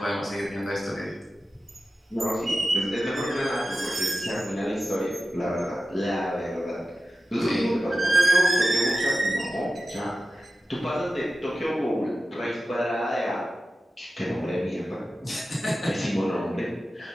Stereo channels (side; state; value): both; normal; correlation 0.94